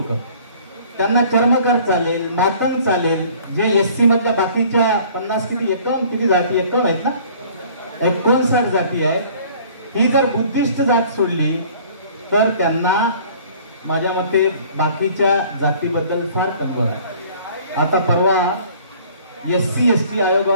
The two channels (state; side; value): inverted; both; correlation -0.52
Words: त्यांना चर्मकार चालेल, मातंग चालेल, जे एससी मधल्या बाकीच्या 50 किती जाती 51 आहेत ना, 59 जाती आहेत, ही जर बुद्धिस्ट जात सोडली तर त्यांना माझ्या मते बाकीच्या जातीबद्दल फार कल्पना आहे. आता परवा SC ST